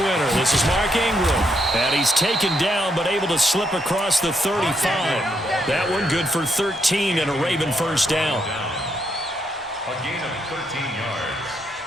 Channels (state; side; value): normal; both; correlation 0.77